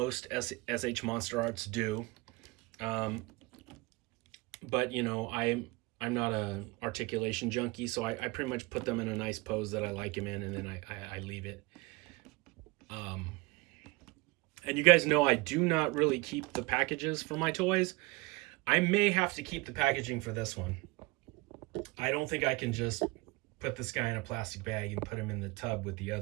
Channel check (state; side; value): quieter; left; 24.6 dB